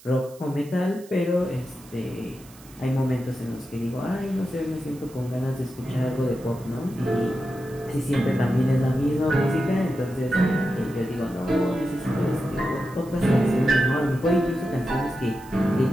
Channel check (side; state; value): right; noise; hiss, 23 dB below the sound